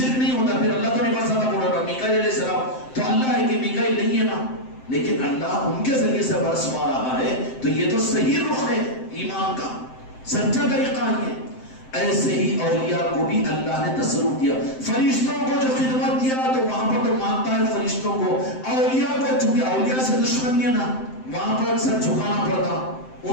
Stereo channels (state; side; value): late; right; 7.7 ms